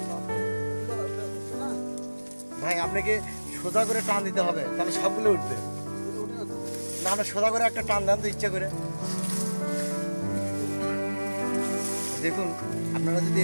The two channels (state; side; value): inverted; both; correlation -1.00